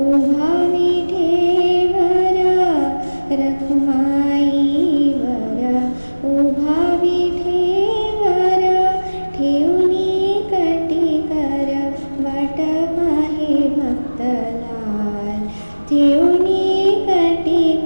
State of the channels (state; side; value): inverted; both; correlation -1.00